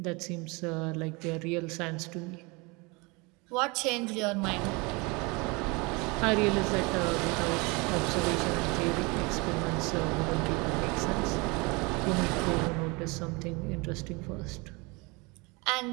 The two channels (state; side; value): quieter; left; 27.2 dB